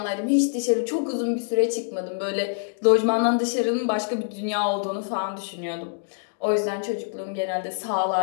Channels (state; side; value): silent; right; digital silence